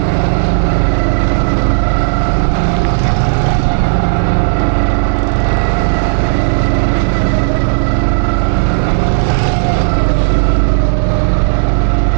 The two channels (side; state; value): left; silent; 59 dB below the other